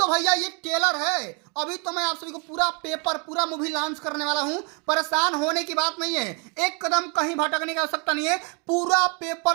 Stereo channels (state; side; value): quieter; left; 33.7 dB